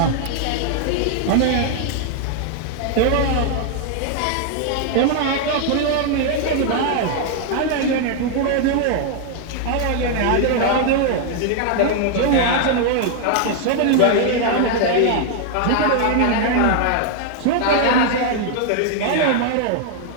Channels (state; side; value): different; both; correlation 0.00